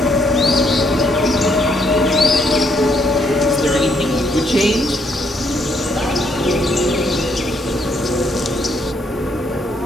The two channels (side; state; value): both; normal; correlation 0.71